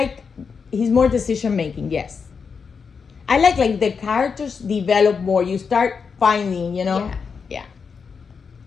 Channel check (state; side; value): quieter; right; 5.7 dB